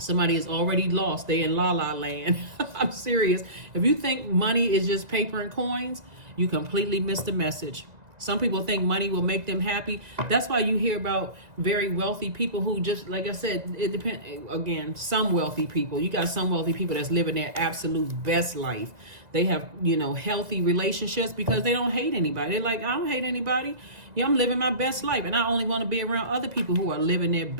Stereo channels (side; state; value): left; late; 1.9 ms